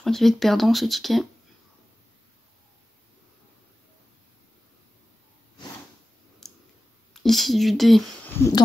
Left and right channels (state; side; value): normal; both; correlation 0.95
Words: crois qu'il va être perdant ce ticket. Ici du D